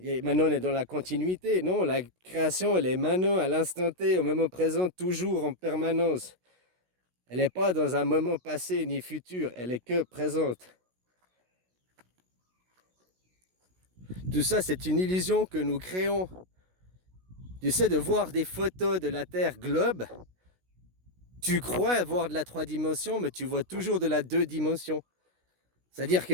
maintenant, on est dans la continuité. Non, la création, elle est maintenant, à l'instant T, au moment présent, toujours en permanence. Elle n'est pas dans un moment passé ni futur, elle est que présente. Tout ça, c'est une illusion que nous créons. Tu sais, de voir des photos de la Terre globe, tu crois voir de la 3 dimensions, mais tu vois toujours de la 2 dimensions. C'est-à-dire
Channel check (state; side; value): late; left; 16 ms